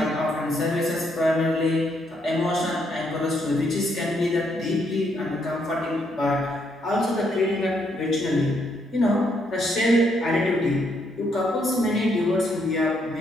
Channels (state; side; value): normal; both; correlation 0.74